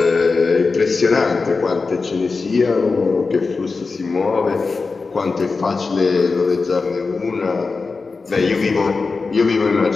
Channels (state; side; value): quieter; right; 4.3 dB